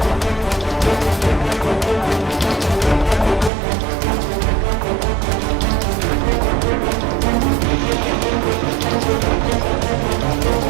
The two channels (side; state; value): left; drops out; at 3.5 s